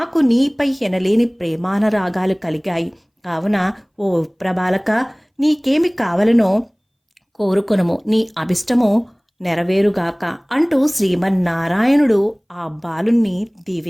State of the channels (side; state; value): both; identical; correlation 1.00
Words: నీపై ఎనలేని ప్రేమానరాగాలు కలిగాయి. కావున ఓ ప్రభాలక, నీకేమి కావలనో కోరుకొనుము, నీ అభిష్టము నెరవేరుగాక అంటూ శ్రీమన్నారాయణుడు ఆ బాలుణ్ణి